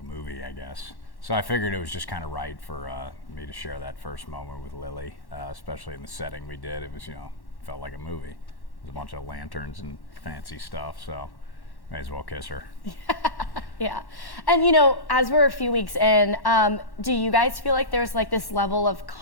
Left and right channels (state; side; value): late; right; 1.1 ms